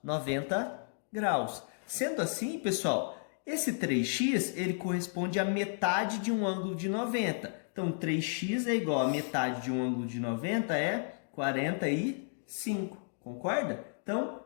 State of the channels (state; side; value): silent; right; digital silence